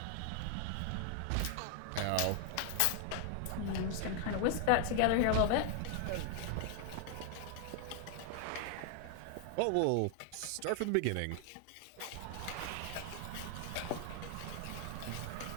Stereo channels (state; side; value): different; both; correlation 0.00